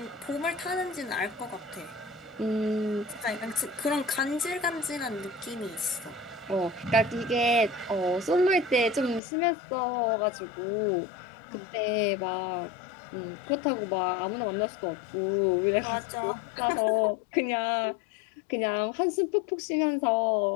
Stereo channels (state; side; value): drops out; right; at 9.2 s